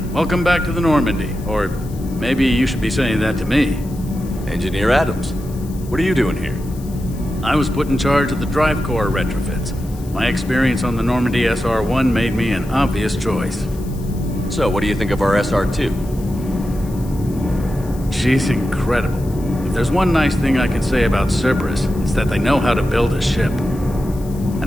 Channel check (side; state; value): left; noise; hiss, 21 dB below the sound